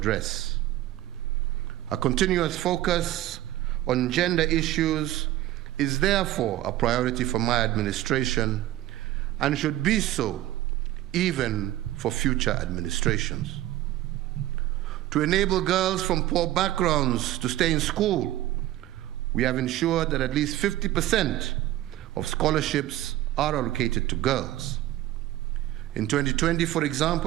A continuous focus on gender issues is therefore a priority for my administration and should be so even for future administrations. To enable girls from poor backgrounds to stay in school, we have ensured that at least 50% of scholarships are allocated to girls. In 2020, for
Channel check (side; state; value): left; quieter; 14.6 dB